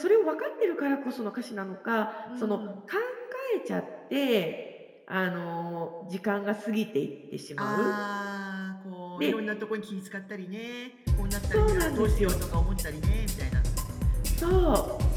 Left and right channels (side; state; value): both; identical; correlation 1.00